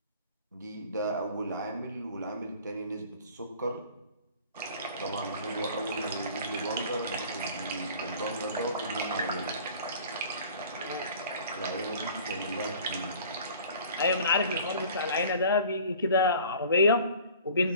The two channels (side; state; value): both; inverted; correlation -0.47